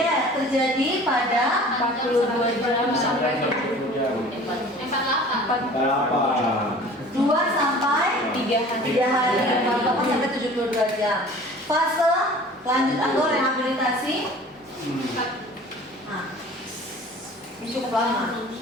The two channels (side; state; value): both; normal; correlation 0.45